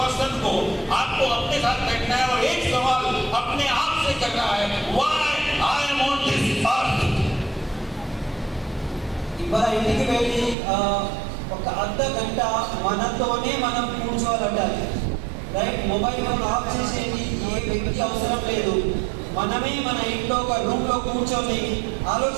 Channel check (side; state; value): left; drops out; at 10.6 s